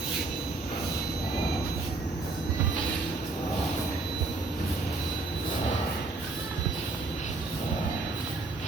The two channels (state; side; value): quieter; left; 3.4 dB